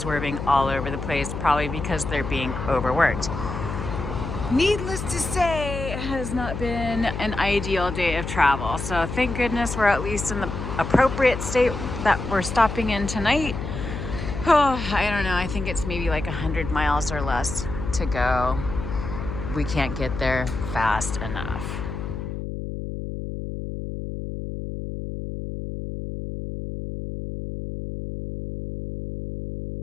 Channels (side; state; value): left; noise; hum, 6 dB below the sound